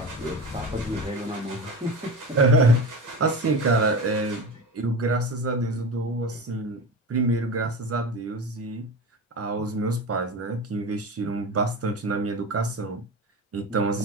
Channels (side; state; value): both; normal; correlation 0.28